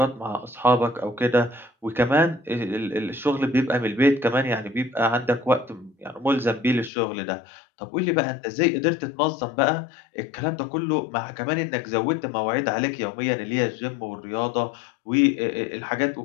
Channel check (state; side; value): drops out; right; at 6.9 s